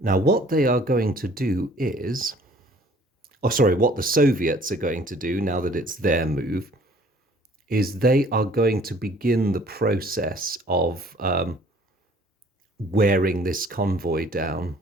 what they are going to do is, what the Soviets are going to do now that it's their move, is they are going to begin the process of wearing this convoy down.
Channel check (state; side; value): normal; both; correlation 0.55